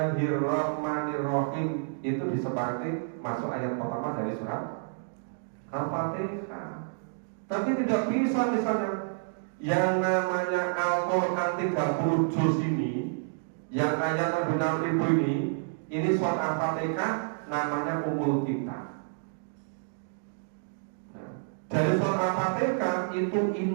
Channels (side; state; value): left; silent; digital silence